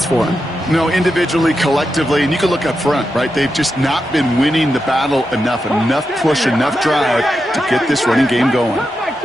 for him. No, individually, collectively, and you can look up front, right? They've just not been winning the battle enough push, enough drive to get this running game going.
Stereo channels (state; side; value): normal; both; correlation 0.88